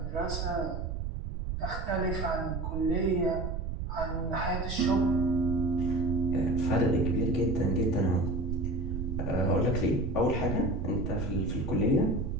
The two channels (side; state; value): right; noise; rumble, 4 dB below the sound